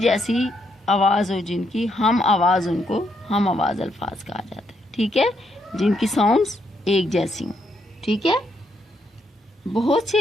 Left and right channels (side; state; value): both; normal; correlation 0.76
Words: آواز ہو، جن کی ہم آواز، ان کو ہم آواز الفاظ کہا جاتا ہے، ٹھیک ہے، جن کی ساؤنڈز ایک جیسی ہوں، ٹھیک ہے۔ بہت سی